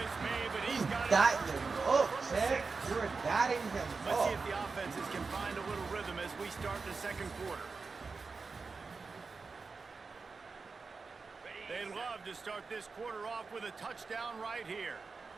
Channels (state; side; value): quieter; left; 4.5 dB